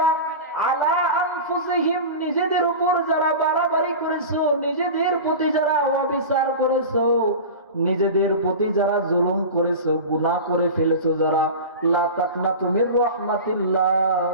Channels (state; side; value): inverted; both; correlation -0.30